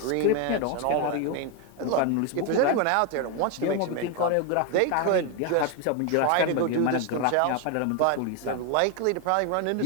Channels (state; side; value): different; both; correlation 0.01